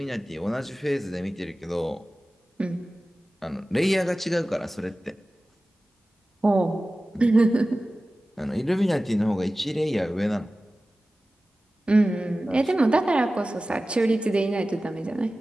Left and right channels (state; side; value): normal; both; correlation 0.96